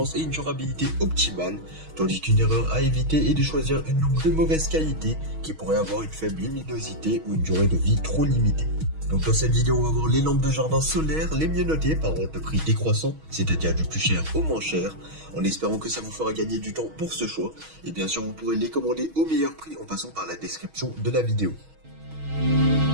et une durabilité optimale, tandis qu'une erreur à éviter est de choisir une lampe de mauvaise qualité qui pourrait avoir une faible luminosité ou une durée de vie trop limitée. Donc dans cette vidéo, on va voir les lampes de jardin solaire les mieux notées par ordre de prix décroissant, c'est-à-dire du plus cher au moins cher, en espérant que ça vous fera gagner du temps pour ce choix. Et bien sûr, vous pourrez les commander au meilleur prix en passant par la description de la vidéo.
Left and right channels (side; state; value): left; late; 6.3 ms